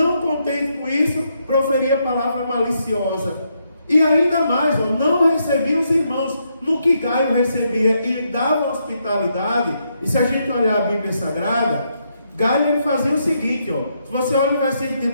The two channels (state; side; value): inverted; both; correlation -0.78